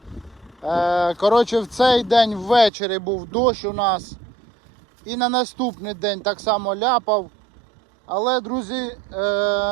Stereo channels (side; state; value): left; drops out; at 2.7 s